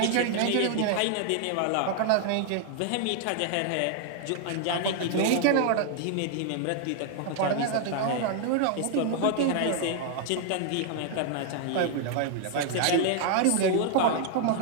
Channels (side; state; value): both; different; correlation 0.00